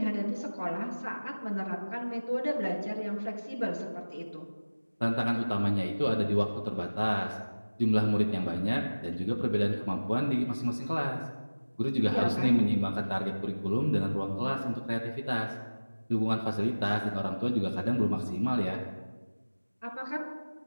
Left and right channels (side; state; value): both; inverted; correlation -1.00